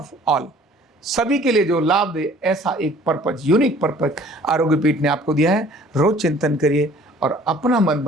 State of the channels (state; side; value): normal; both; correlation 0.53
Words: all, सभी के लिए जो लाभ दे, ऐसा एक पर्पज, यूनिक पर्पज आरोग्य पीठ ने आपको दिया है। रोज चिंतन करिए और अपना मन